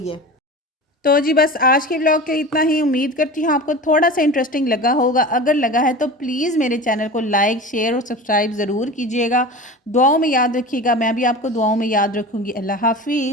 है। तो जी बस आज के व्लॉग के इतना ही। उम्मीद करती हूँ आपको थोड़ा सा इंटरेस्टिंग लगा होगा। अगर लगा है तो प्लीज़ मेरे चैनल को लाइक, शेयर और सब्सक्राइब ज़रूर कीजिएगा। दुआओं में याद रखिएगा, मैं भी आपको दुआओं में याद रखूँगी। अल्लाह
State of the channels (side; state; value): both; normal; correlation 0.33